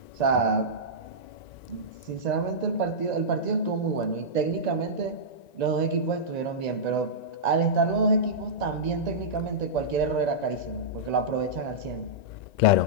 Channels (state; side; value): late; right; 1.9 ms